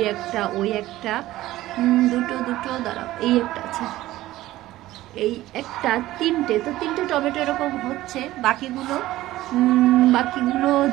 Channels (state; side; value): quieter; left; 16.0 dB